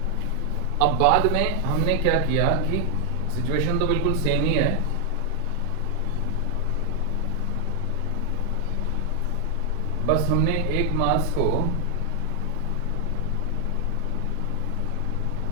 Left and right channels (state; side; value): different; both; correlation 0.00